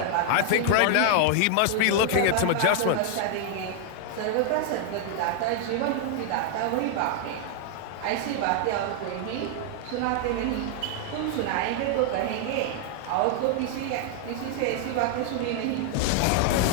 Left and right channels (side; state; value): both; different; correlation 0.00